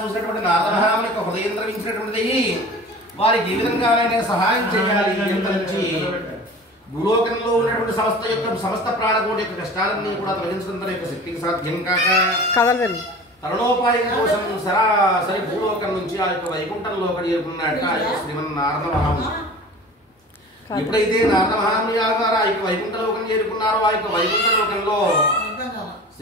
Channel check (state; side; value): normal; both; correlation 0.39